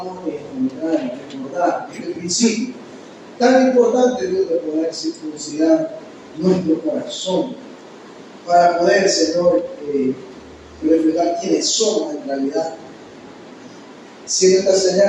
recordar este principio tan importante, Dios, de poder circuncidar nuestro corazón para poder, Señor, reflejar quiénes somos en realidad, siendo esta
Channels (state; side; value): identical; both; correlation 1.00